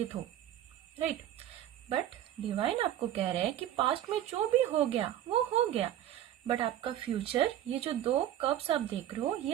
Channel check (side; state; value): left; quieter; 12.0 dB